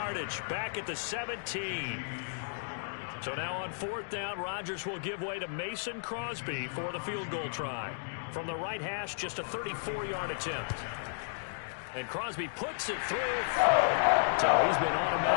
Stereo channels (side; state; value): right; silent; digital silence